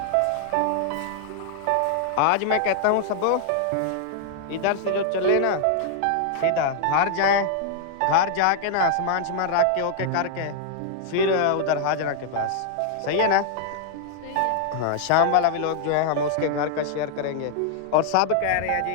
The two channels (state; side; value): different; both; correlation 0.00